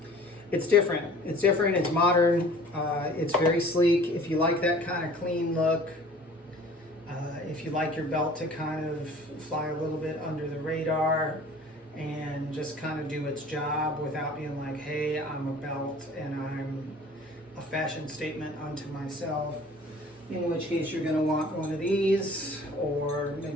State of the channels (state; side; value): normal; both; correlation 0.48